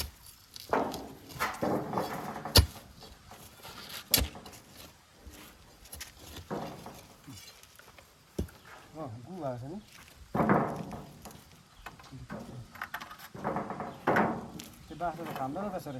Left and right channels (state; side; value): identical; both; correlation 1.00